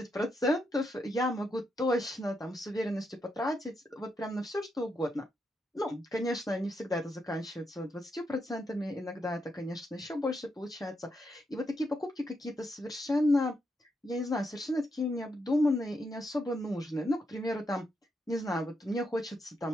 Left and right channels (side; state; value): both; normal; correlation 0.81